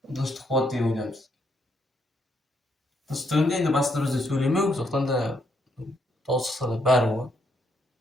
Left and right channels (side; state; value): both; normal; correlation 0.74